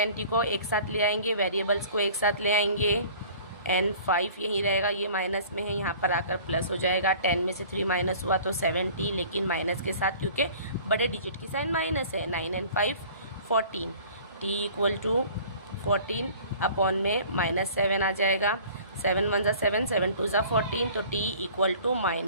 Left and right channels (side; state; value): both; inverted; correlation -0.47